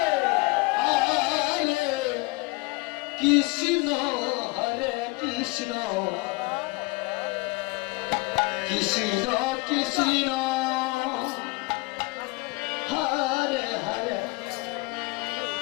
হরে কৃষ্ণ, হরে কৃষ্ণ, কৃষ্ণ কৃষ্ণ, হরে হরে,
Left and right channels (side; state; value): right; quieter; 25.1 dB